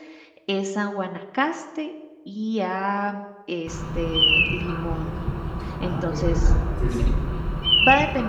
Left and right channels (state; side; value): identical; both; correlation 1.00